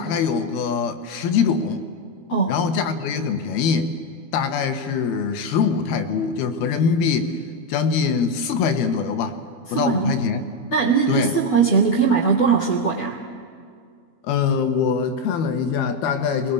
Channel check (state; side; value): late; right; 12 ms